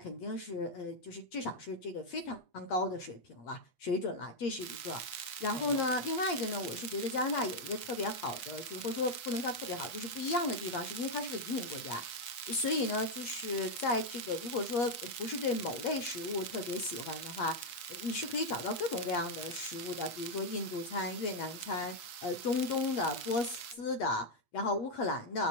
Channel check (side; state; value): right; late; 8.4 ms